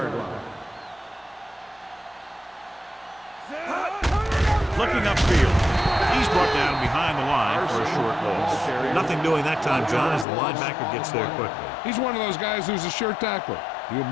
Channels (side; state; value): right; drops out; at 10.2 s